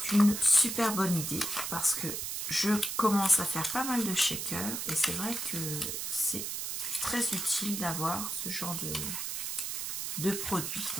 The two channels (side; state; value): right; noise; hiss, 3 dB below the sound